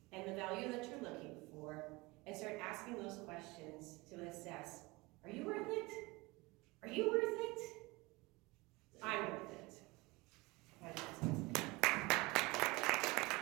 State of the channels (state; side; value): quieter; left; 23.4 dB